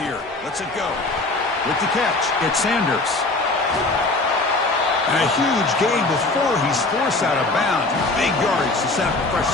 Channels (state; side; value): quieter; right; 3.1 dB